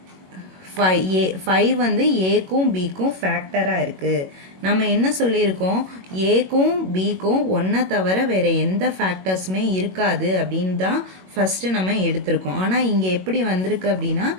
5 வந்து ஏக்கும் பிக்கும் ஃபேக்டராக இருக்குது. நம்ம என்ன சொல்லியிருக்கோம், ஏக்கும் பிக்கும் ஒன்றை தவிர வேறு எந்த ஃபேக்டர்ஸுமே இருக்காது அப்படின்னு தான் ஃபஸ்ட்டு நம்ம எடுத்திருக்கோம். ஆனால் இங்கே எப்படி வந்திருக்கு அப்படின்னா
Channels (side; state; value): left; late; 21 ms